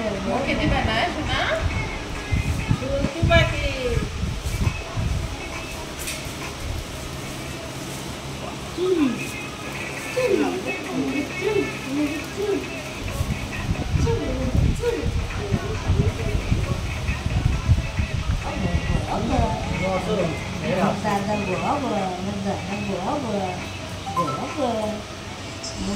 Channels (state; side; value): identical; both; correlation 1.00